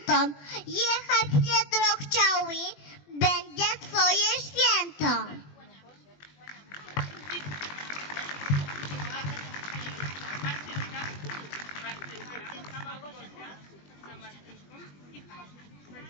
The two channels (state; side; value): late; right; 21 ms